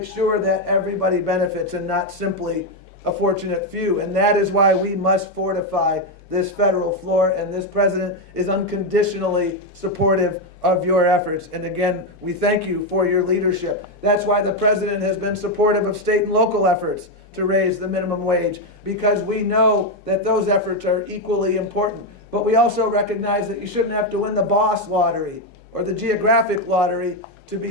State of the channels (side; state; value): both; normal; correlation 0.05